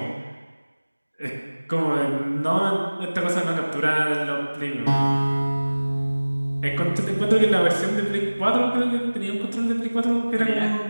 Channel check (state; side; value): inverted; both; correlation -1.00